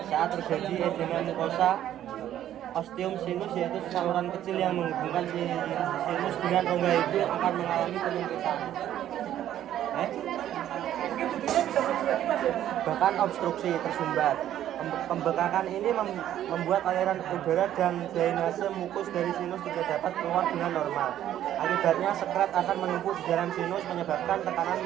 Saat terjadi edema mukosa, ostium sinus yaitu saluran kecil yang menghubungkan sinus dengan rongga itu akan mengalami penyempitan. Mungkin judulnya bisa lagi Mas ya? Bahkan obstruksi tersumbat. Pembekakan ini membuat aliran udara dan drainase mukus dari sinus tidak dapat keluar dengan normal. Akibatnya sekret akan menumpuk di dalam sinus menyebabkan tekanan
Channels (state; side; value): quieter; left; 11.6 dB